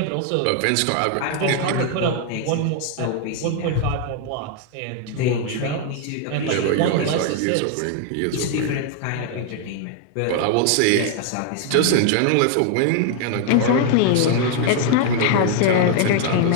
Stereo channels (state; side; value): different; both; correlation 0.00